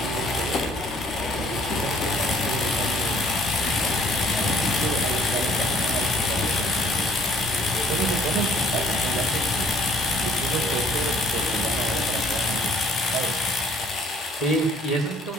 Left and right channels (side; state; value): both; normal; correlation 0.58